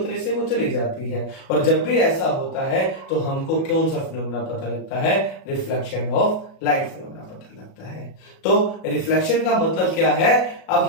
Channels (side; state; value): right; late; 37 ms